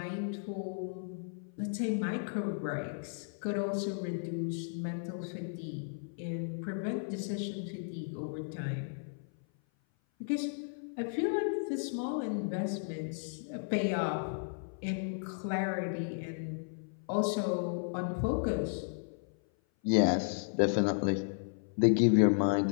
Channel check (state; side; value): silent; right; 55 dB below the other